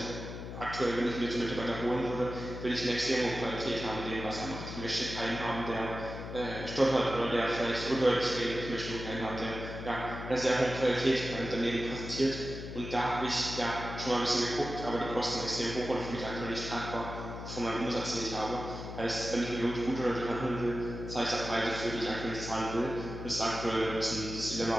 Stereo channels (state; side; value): noise; left; hum, 8 dB below the sound